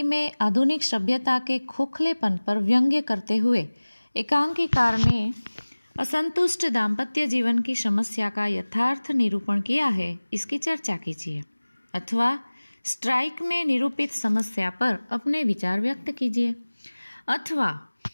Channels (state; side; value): inverted; both; correlation -1.00